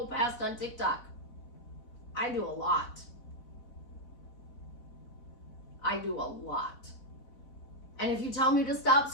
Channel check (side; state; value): right; late; 4.1 ms